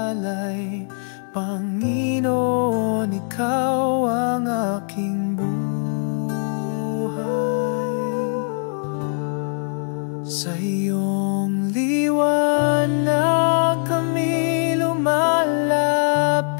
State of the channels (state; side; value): silent; right; 61 dB below the other